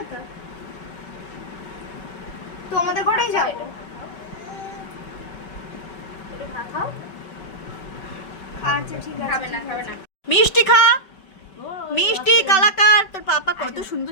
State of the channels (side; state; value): right; late; 5.2 ms